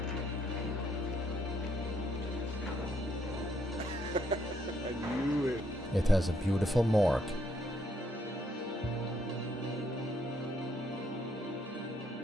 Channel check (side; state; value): both; normal; correlation 0.71